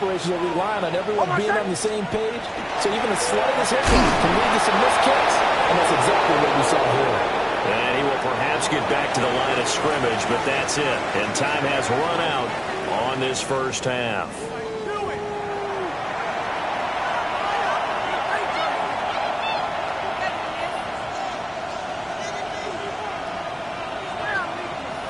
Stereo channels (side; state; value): both; identical; correlation 1.00